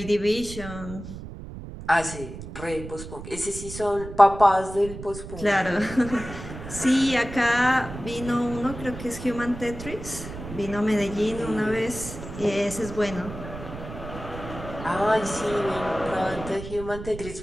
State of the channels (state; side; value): noise; right; rumble, 11 dB below the sound